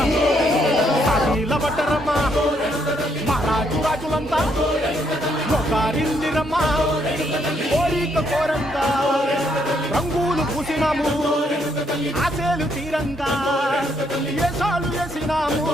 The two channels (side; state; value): both; normal; correlation 0.73